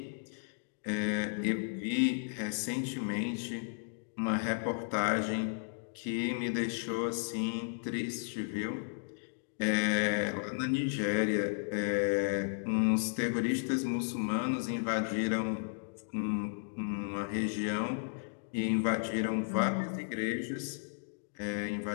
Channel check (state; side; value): silent; right; digital silence